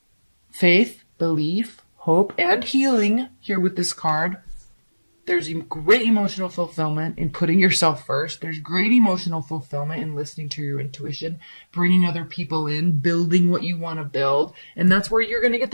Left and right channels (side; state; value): both; inverted; correlation -1.00